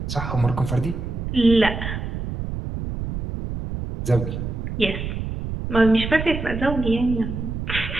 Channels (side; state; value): right; noise; rumble, 5 dB below the sound